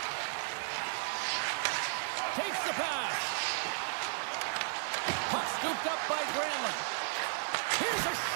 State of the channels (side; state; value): left; silent; digital silence